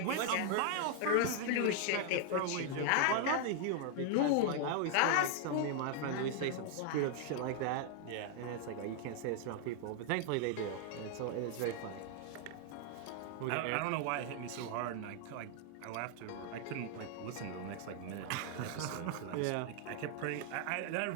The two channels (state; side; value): different; both; correlation 0.00